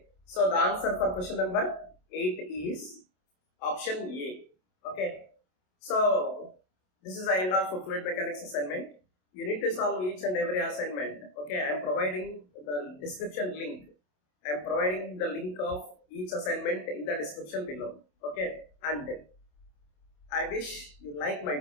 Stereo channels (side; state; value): right; late; 27 ms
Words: So the answer for question number 8 is option A. Okay. So this is the end of fluid mechanics assignment. You need to solve each and every assignment. Okay. I am providing the description link. I am providing the link of each assignment in the description below. Okay. And I wish you like my